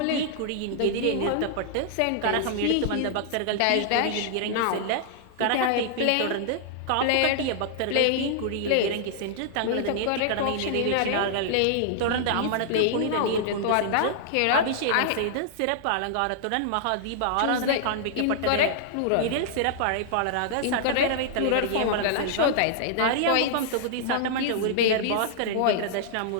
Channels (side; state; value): both; different; correlation -0.01